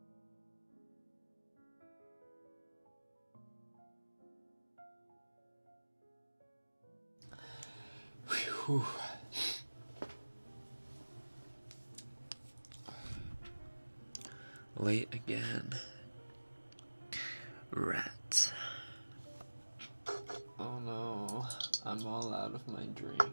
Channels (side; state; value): both; inverted; correlation -1.00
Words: Whew. Late again. Rats. Oh no, I'm all out of my drink.